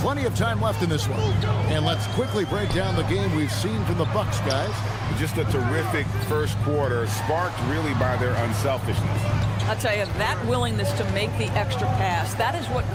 of time left in this one. And let's quickly break down the game we've seen from the Bucks, guys. Just a terrific first quarter, sparked really by their unselfishness. I'll tell you, that willingness to make the extra pass, that is what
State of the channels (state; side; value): identical; both; correlation 1.00